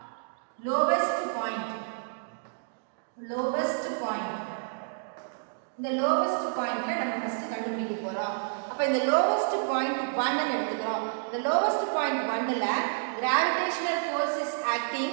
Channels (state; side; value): silent; left; digital silence